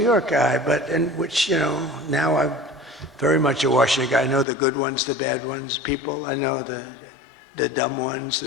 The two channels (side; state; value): right; drops out; at 4.5 s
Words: guy, which, you know, now I'm very much a Washington guy. I know the good ones, the bad ones, people. I know the dumb ones,